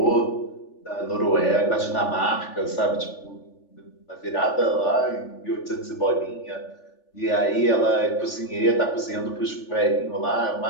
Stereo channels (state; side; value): late; right; 3.4 ms